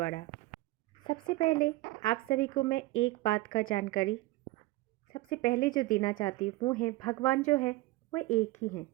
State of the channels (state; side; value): quieter; left; 19.1 dB